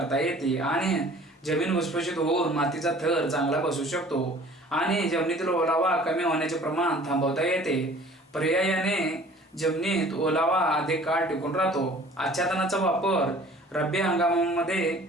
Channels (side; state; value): both; normal; correlation 0.49